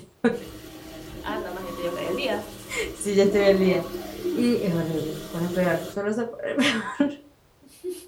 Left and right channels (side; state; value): both; identical; correlation 1.00